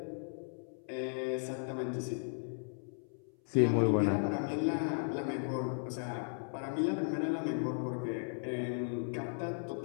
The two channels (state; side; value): silent; right; 54 dB below the other